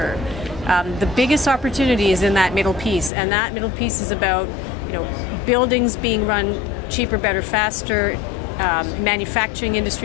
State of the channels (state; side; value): drops out; right; at 3.1 s